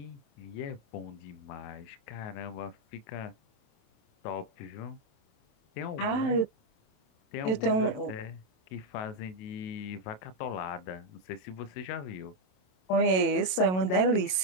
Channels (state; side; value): late; right; 27 ms